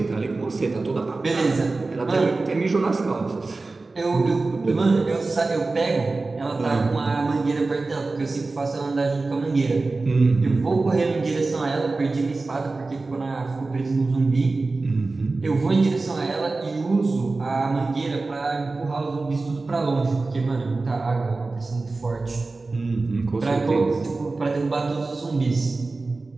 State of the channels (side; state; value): left; quieter; 3.5 dB